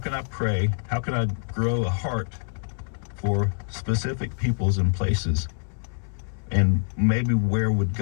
I pray? How can I grow a heart for specific peoples and places? And maybe where would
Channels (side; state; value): right; silent; 61 dB below the other